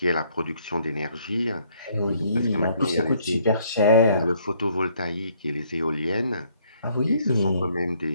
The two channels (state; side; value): inverted; both; correlation -0.65